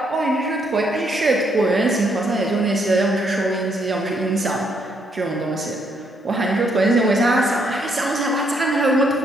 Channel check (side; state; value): both; normal; correlation 0.73